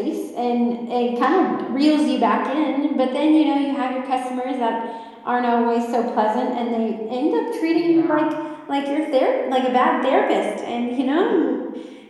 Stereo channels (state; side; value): identical; both; correlation 1.00